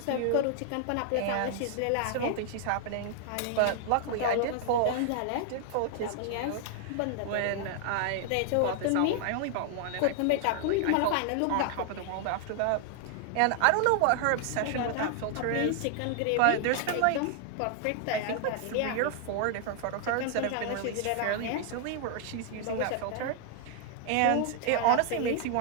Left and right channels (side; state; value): both; different; correlation 0.00